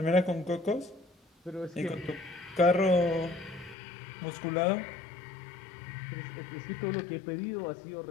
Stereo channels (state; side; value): drops out; right; at 3.8 s